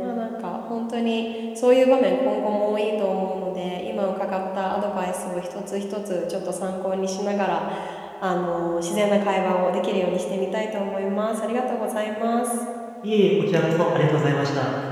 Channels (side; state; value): both; identical; correlation 1.00